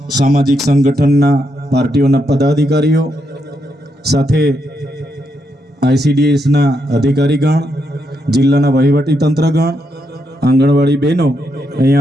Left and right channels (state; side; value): normal; both; correlation 0.80